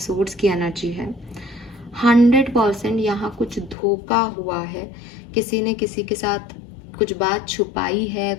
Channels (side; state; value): right; drops out; at 3.8 s